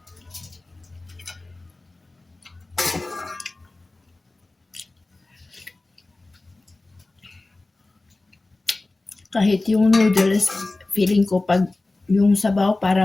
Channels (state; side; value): quieter; right; 3.1 dB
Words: Kahit yung noodles, feeling ko pag yung sabaw